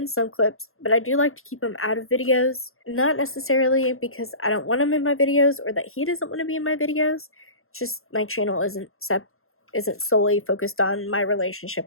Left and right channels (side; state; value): right; late; 0.61 ms